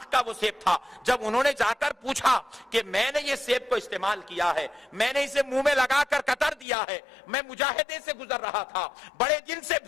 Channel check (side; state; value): right; drops out; at 6.7 s